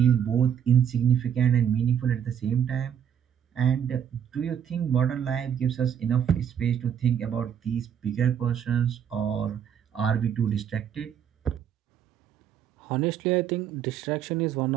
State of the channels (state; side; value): quieter; left; 8.7 dB